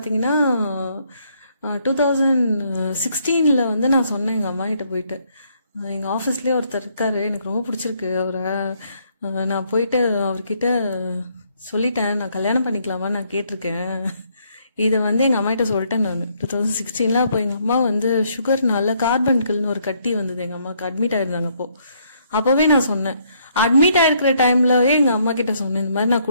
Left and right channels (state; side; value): inverted; both; correlation -0.70